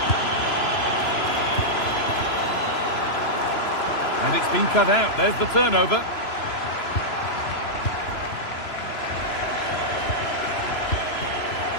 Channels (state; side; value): late; right; 3.0 ms